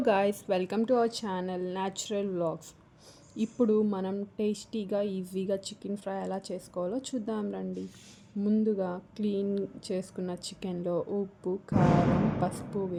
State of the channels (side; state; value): both; identical; correlation 1.00